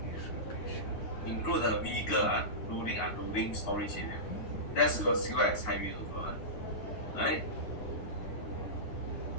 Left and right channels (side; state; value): right; late; 9.6 ms